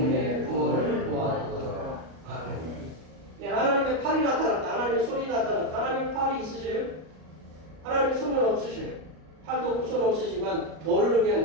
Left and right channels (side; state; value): left; late; 37 ms